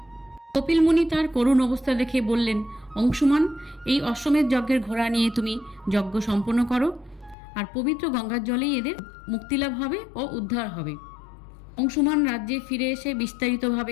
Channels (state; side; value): drops out; right; at 7.4 s